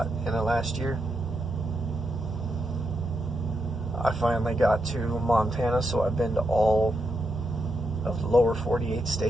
in the last year. I finally got to Montana, so I've been to all of the lower 48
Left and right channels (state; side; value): normal; both; correlation 0.83